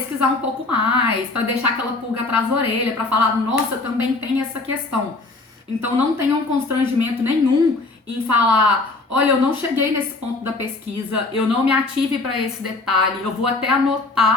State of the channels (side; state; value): right; quieter; 3.4 dB